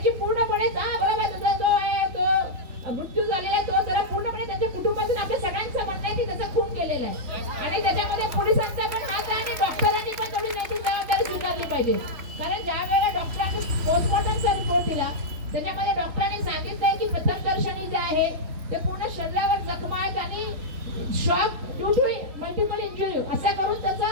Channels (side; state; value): left; late; 3.5 ms